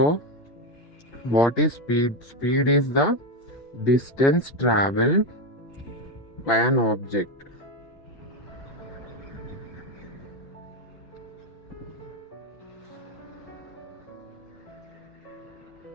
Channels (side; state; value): right; late; 6.0 ms